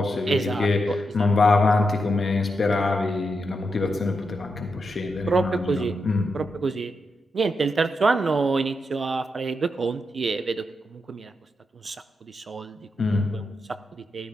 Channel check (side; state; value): both; normal; correlation 0.85